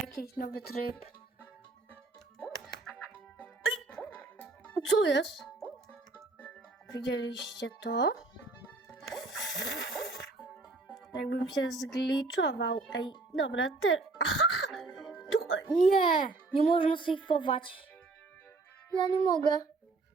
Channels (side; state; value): left; quieter; 3.5 dB